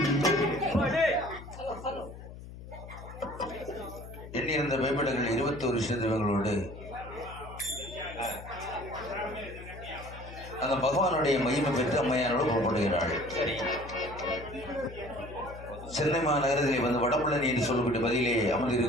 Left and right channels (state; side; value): noise; left; hum, 14 dB below the sound